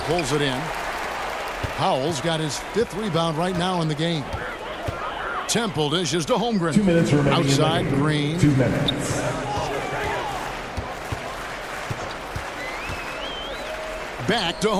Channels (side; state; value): both; identical; correlation 1.00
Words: it in. Powell's got his 5th rebound right now in the game. Temple dishes to Holmgren. 2 minutes remaining. Outside, Green. 2 minutes. Back to